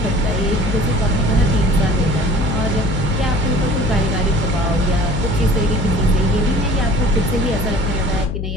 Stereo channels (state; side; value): noise; left; hum, 4 dB below the sound